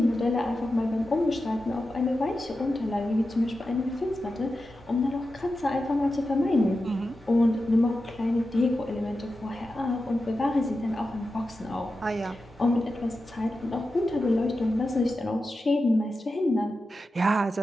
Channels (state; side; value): normal; both; correlation 0.91